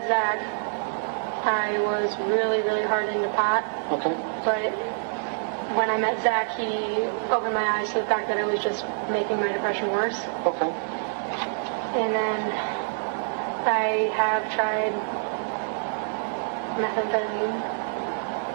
Zach, I was really, really hard into pot. Okay. But when I met Zach, he opened my eyes to the fact that it was just making my depression worse. Okay. And then I have tried methamphetamine.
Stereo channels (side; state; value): left; silent; digital silence